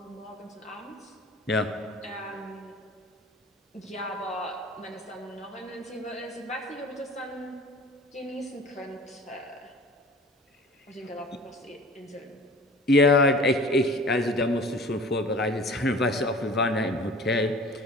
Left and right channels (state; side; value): normal; both; correlation 0.43